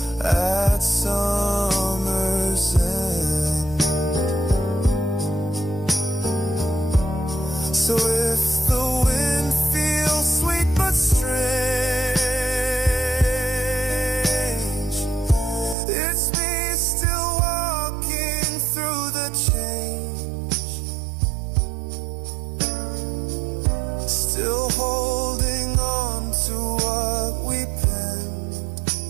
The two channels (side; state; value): left; drops out; at 15.8 s